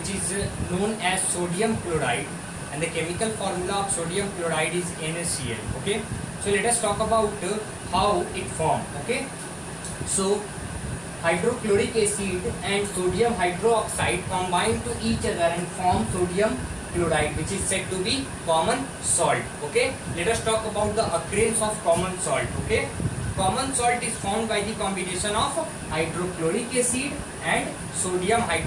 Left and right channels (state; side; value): noise; right; rumble, 23 dB below the sound